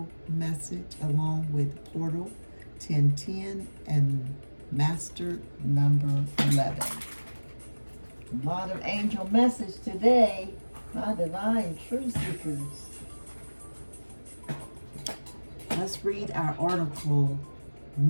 message, along with portal 10 10 and master number 11. A lot of angel message today, my divine truth seekers. Let's read our article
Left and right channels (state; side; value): inverted; both; correlation -1.00